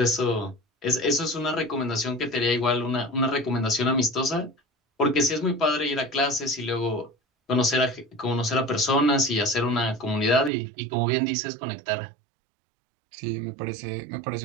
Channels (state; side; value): drops out; left; at 10.5 s